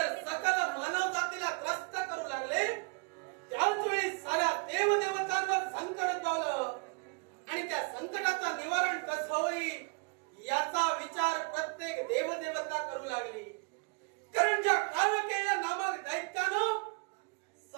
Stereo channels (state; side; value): quieter; left; 33.1 dB